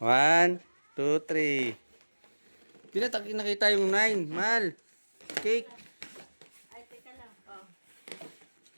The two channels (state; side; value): inverted; both; correlation -1.00